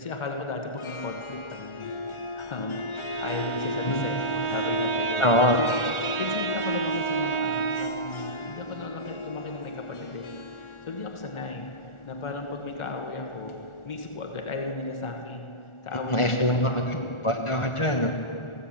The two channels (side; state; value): right; late; 1.4 ms